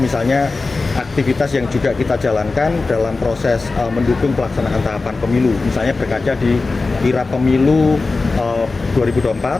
aktivitas yang juga kita jalankan dalam proses mendukung pelaksanaan tahapan pemilu. Misalnya berkaca di kirap pemilu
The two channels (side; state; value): right; quieter; 3.7 dB